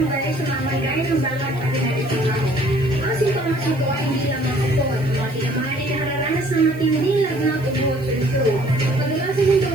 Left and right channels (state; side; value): noise; right; hiss, 24 dB below the sound